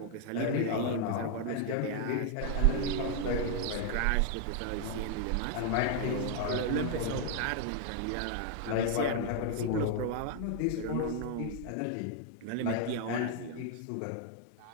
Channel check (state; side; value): different; both; correlation 0.00